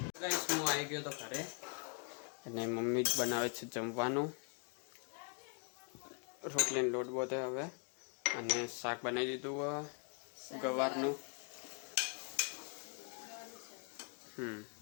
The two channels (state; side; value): quieter; right; 39.7 dB